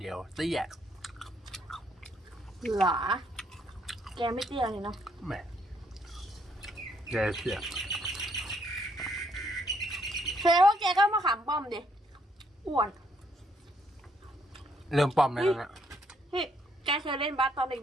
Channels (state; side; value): normal; both; correlation 0.70